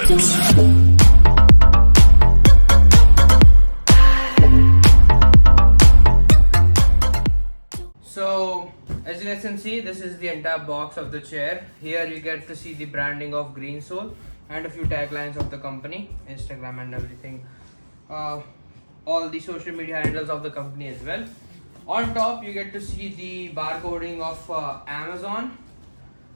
So as you guys can see, this is the entire box of the chair. Here you get to see the branding of Greensoul and a few taglines of the company, Instagram and everything. All the social media handles of the company as well. On top you get to see the barcoding of Amazon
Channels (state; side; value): inverted; both; correlation -1.00